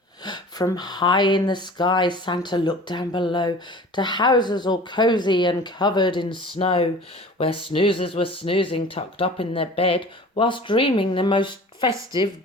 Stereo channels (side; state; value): both; normal; correlation 0.42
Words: From high in the sky, Santa looked down below to houses all cosy and covered in snow, where snoozers were snoozing tucked up in their bed, whilst dreaming the most festive